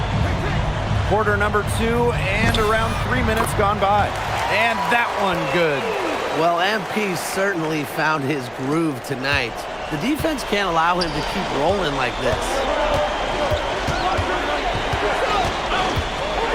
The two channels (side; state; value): both; identical; correlation 1.00